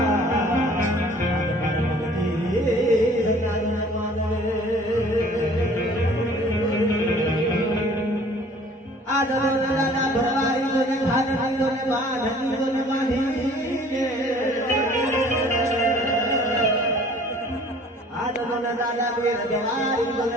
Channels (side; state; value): both; normal; correlation 0.52